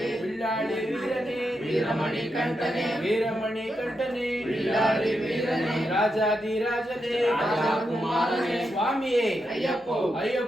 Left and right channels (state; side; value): normal; both; correlation 0.85